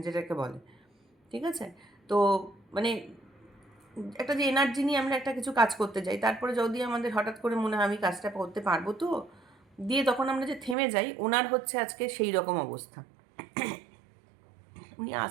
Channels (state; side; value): drops out; left; at 10.8 s